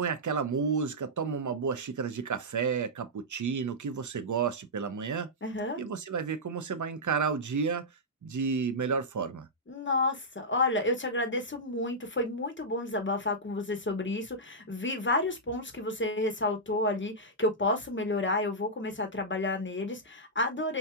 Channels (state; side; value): normal; both; correlation -0.10